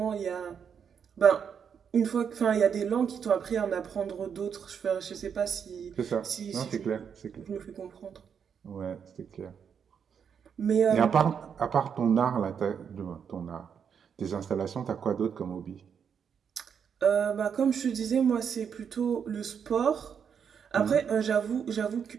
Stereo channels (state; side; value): quieter; left; 7.3 dB